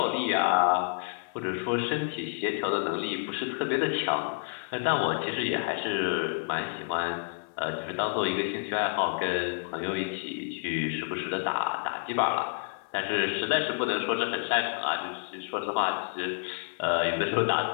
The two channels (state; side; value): silent; right; 55 dB below the other